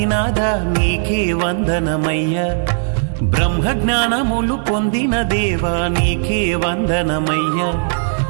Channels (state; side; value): silent; left; digital silence